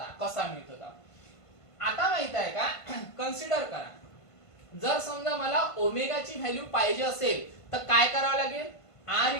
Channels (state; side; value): late; right; 1.5 ms